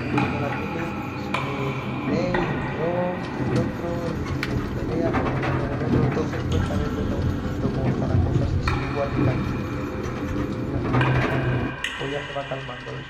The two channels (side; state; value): both; identical; correlation 1.00